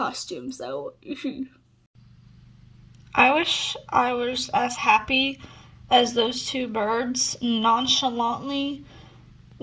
so I wish I was as happy as those two birds nonchalantly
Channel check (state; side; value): identical; both; correlation 1.00